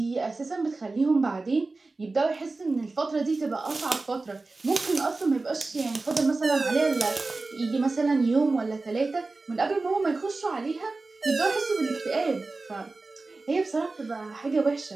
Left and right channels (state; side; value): quieter; left; 3.5 dB